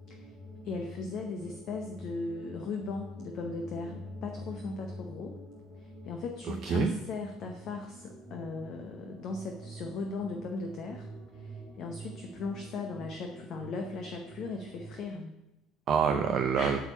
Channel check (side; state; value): both; normal; correlation 0.61